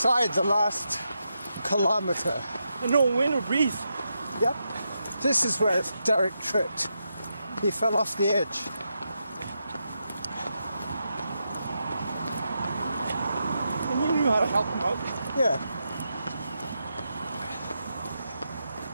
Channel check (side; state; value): both; inverted; correlation -0.85